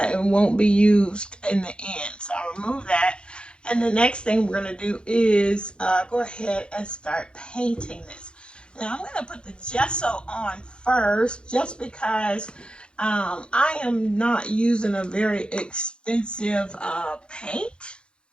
It won't be used in the end. So I remove that. And the next thing we're going to do is go ahead and start painting this. Now I'm going to put the gesso on first just because I am not using a very expensive paint.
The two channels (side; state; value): right; late; 0.054 ms